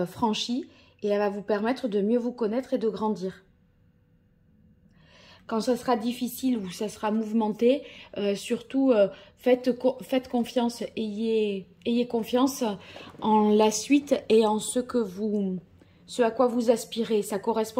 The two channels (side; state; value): both; identical; correlation 1.00